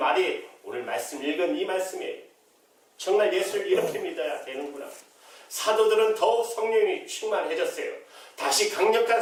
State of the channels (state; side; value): identical; both; correlation 1.00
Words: 오늘 말씀 읽은 이 말씀이에요. 정말 예수를 이렇게 믿어야 되는구나. 사도들은 더욱 성령이 충만해졌어요. 다시 강력한